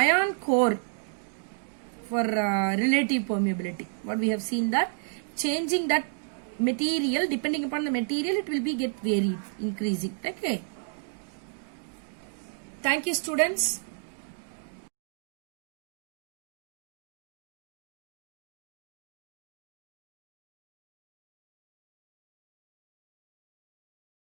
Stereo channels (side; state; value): left; silent; digital silence